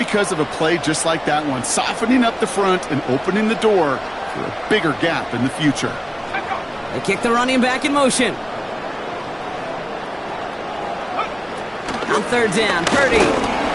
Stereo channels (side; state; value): both; identical; correlation 1.00